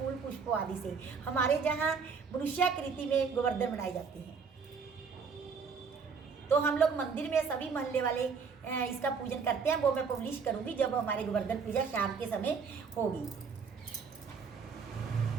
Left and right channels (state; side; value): quieter; left; 5.7 dB